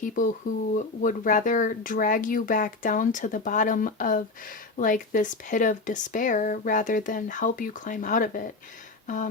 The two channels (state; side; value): quieter; right; 3.6 dB